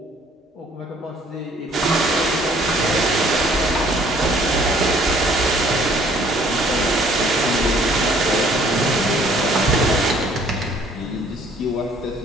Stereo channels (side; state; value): both; normal; correlation 0.59